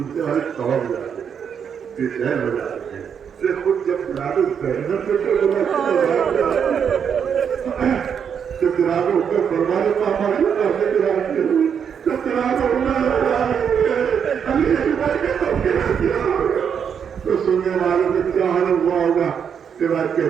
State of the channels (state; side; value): quieter; left; 7.5 dB